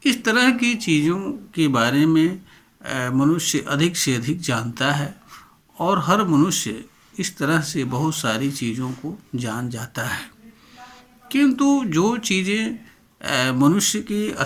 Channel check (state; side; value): identical; both; correlation 1.00